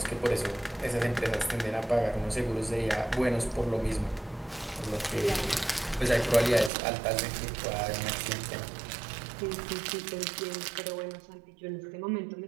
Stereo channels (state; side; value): drops out; left; at 6.7 s